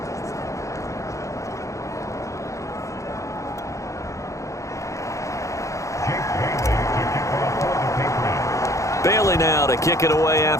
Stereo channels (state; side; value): late; right; 0.15 ms